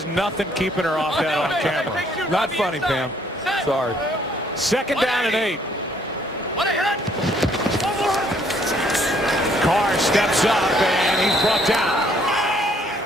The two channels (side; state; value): both; normal; correlation 0.65